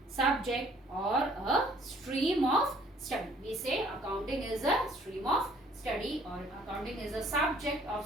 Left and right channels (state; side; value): normal; both; correlation 0.59